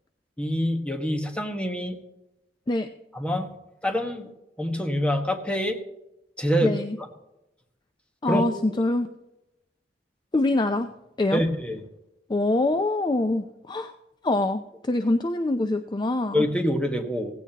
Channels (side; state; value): both; normal; correlation 0.77